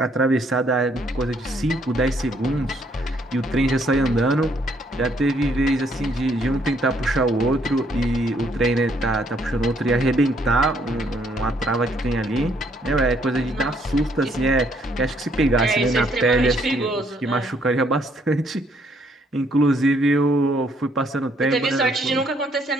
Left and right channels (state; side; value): normal; both; correlation 0.68